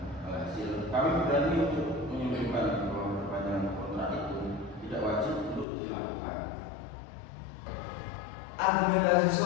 Alhasil, kami berani untuk menyimpulkan bahwa perpanjangan kontrak itu tidak wajib untuk dilakukan. Argumentasi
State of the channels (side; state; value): right; drops out; at 5.7 s